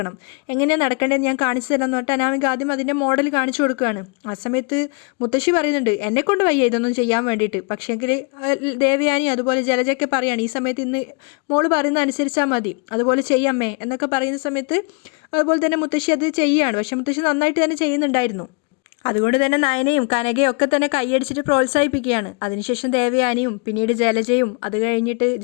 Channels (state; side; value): quieter; right; 33.5 dB